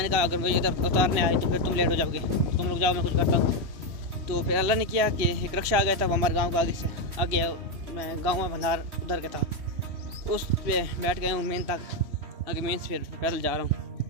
कहा अगर मुझे इधर उतारने आए तो फिर तुम लेट हो जाओगे, तुम लोग जाओ मैं कुछ करता हूँ। तो फिर अल्लाह ने किया कि एक रिक्शा आ गया था, वो हमारे गाँव का आगे से आगे, मैं गाँव में भंडार उधर का था, उस पर बैठ गया हूँ मेन तक, आगे मेन से फिर पैदल जा रहा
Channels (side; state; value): left; late; 3.1 ms